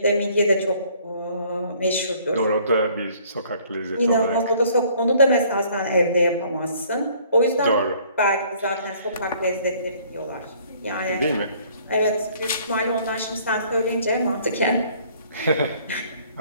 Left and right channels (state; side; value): inverted; both; correlation -0.58